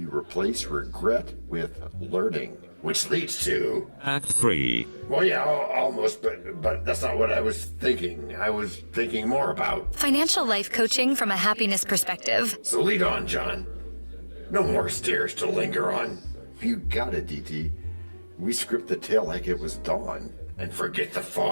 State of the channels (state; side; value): inverted; both; correlation -1.00